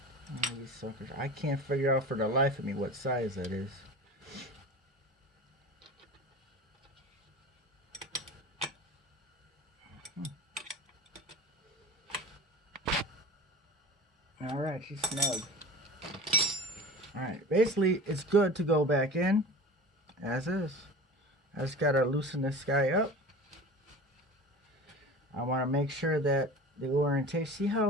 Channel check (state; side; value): normal; both; correlation 0.35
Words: these suckers. I can't figure out for the life of me what size that is. Alright, she's snug. Alright, basically it's good to go back in as is. I just gotta loosen this guy up. I want to make sure that the orientation, see